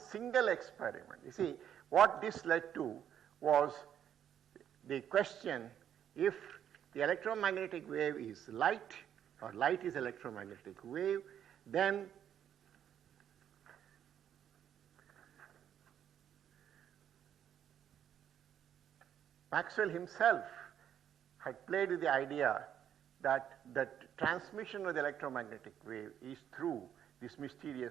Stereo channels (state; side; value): quieter; left; 9.6 dB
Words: experiment. You see, what this led to was the question, if the electromagnetic wave is light, or light is electromagnetic wave, then Maxwell himself had played with the idea that the transmission of the electromagnetic wave is through this